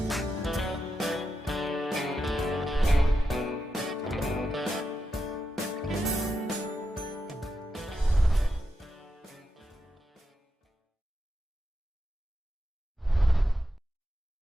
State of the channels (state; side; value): normal; both; correlation 0.87